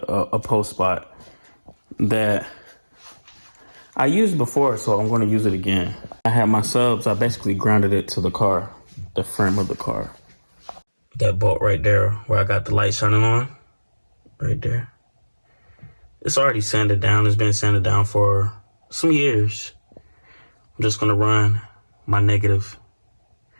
post spot that I used before, so I'm gonna use it again. I had my subs, I basically grounded it to the car, the frame of the car. That bolt right there where I got the light shining on, right there. It's already sanded down. It's been sanded down for some years. I'm just gonna run my negative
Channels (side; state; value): both; inverted; correlation -1.00